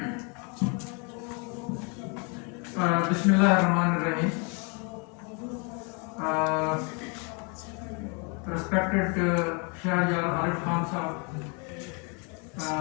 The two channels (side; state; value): right; quieter; 34.6 dB